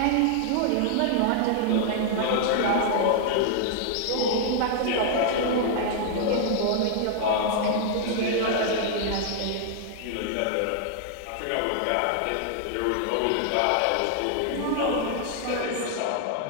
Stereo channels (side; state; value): both; different; correlation -0.01